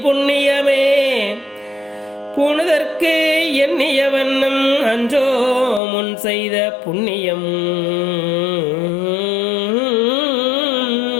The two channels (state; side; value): drops out; right; at 5.8 s